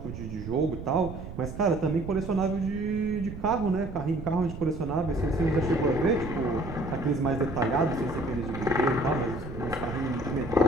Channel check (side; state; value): right; noise; rumble, 10 dB below the sound